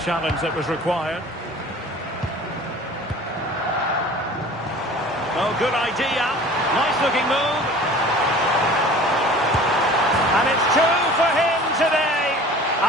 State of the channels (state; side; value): normal; both; correlation 0.44